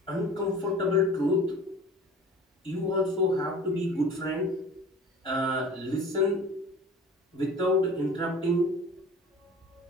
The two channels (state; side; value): normal; both; correlation 0.42